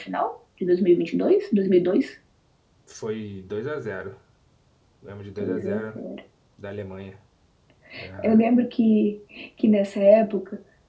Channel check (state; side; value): identical; both; correlation 1.00